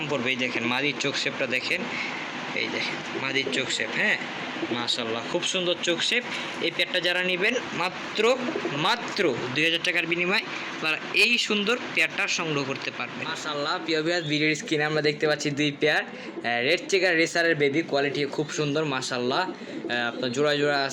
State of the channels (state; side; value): identical; both; correlation 1.00